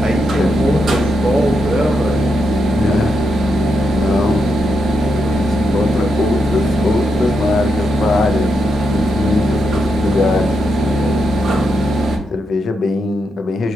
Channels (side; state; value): both; normal; correlation 0.83